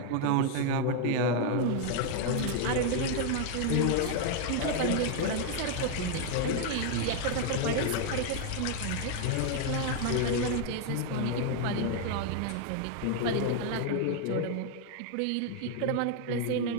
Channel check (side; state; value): both; different; correlation 0.00